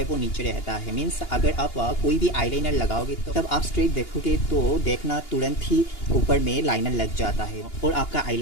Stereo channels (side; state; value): right; late; 2.9 ms